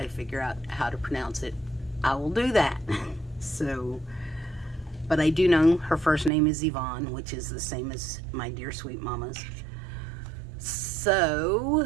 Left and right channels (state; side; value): drops out; left; at 6.3 s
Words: figure out how to pronounce it, I will do that. So, but I do know her first name is Yvonne, which is the same as my dear sweet mama's.